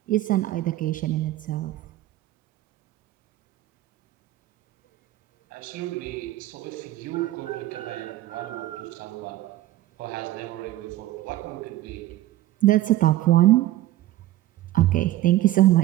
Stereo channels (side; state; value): left; quieter; 15.1 dB